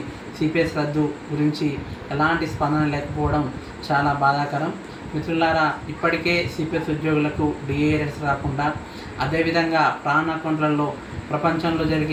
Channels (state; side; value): identical; both; correlation 1.00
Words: సిపిఎస్ రద్దు గురించి ఎలాంటి స్పందన లేకపోవడం చాలా బాధాకరం. మిత్రులారా, ఇప్పటికే సిపిఎస్ ఉద్యోగులకు డిఏఎస్ రాకుండా, అదేవిధంగా ప్రాణ అకౌంట్లలో ప్రపంచంలో